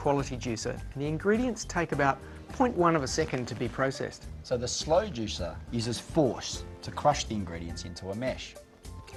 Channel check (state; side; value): identical; both; correlation 1.00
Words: juicer, and the ingredients take about 0.1 of a second to be processed. So the slow juicer uses force to crush the ingredients into a mesh.